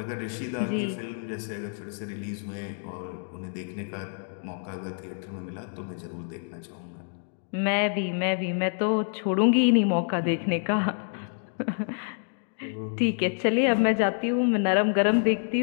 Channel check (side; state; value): right; silent; 60 dB below the other